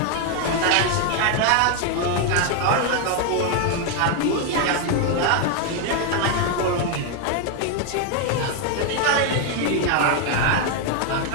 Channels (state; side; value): different; both; correlation 0.01